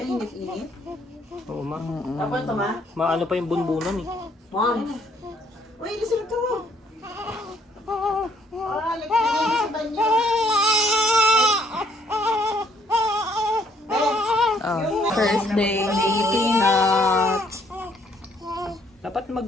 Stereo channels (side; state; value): both; normal; correlation 0.66